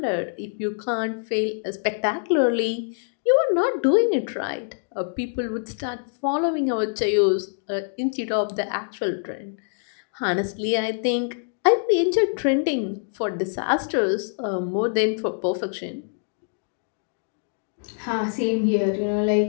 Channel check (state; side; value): silent; right; digital silence